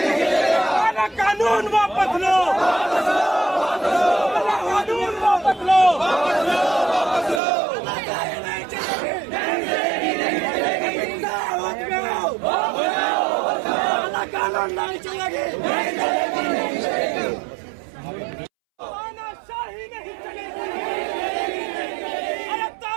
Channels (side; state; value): left; drops out; at 7.4 s